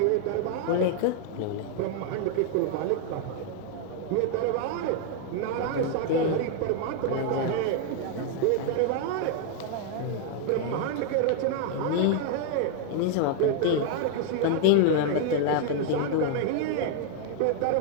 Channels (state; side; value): different; both; correlation 0.00